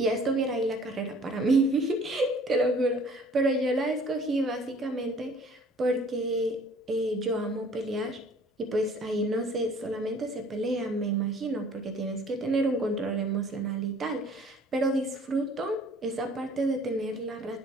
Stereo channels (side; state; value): both; normal; correlation 0.53